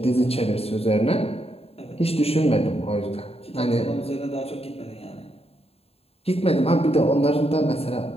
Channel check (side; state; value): right; late; 0.29 ms